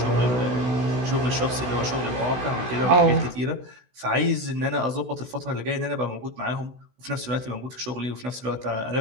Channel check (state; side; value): late; left; 16 ms